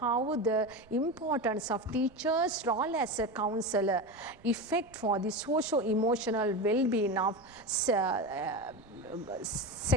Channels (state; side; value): noise; right; rumble, 26 dB below the sound